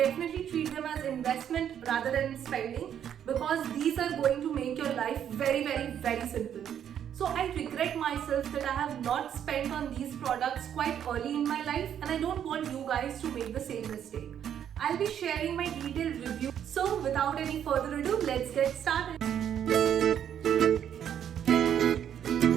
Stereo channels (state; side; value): quieter; left; 9.4 dB